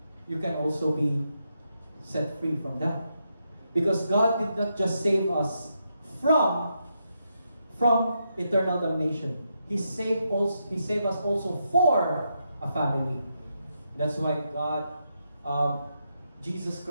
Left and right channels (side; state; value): both; inverted; correlation -0.82